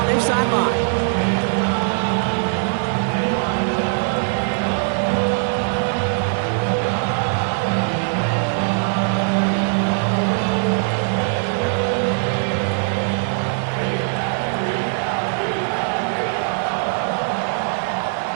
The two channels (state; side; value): silent; left; 65 dB below the other